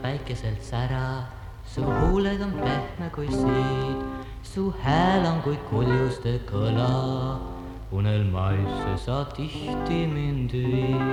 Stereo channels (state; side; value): identical; both; correlation 1.00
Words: päikeselt sära, su huuled on pehme kui siid, su hääl on kui kuljuste kõla, unelmaisse sa tihti mind